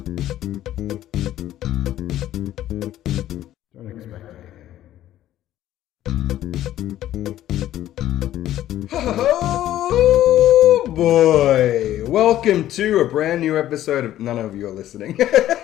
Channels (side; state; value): right; quieter; 13.0 dB